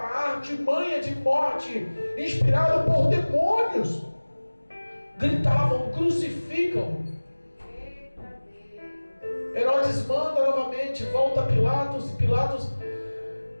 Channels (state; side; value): inverted; both; correlation -1.00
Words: artimanha de morte, inspirado por demônios, gritavam: crucificam. Herodes manda novamente, volta a Pilatos, e Pilatos